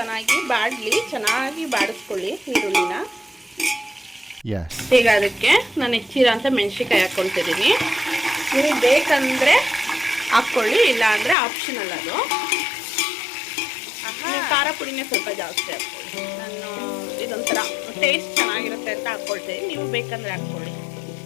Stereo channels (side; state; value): right; drops out; at 11.4 s